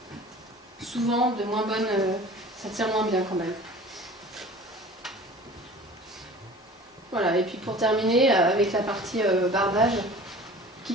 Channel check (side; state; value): both; normal; correlation 0.42